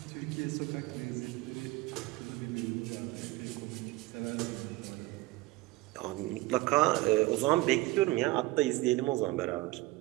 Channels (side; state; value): left; quieter; 19.6 dB